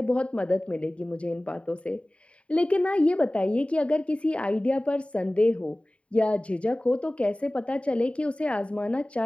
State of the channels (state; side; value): late; right; 0.061 ms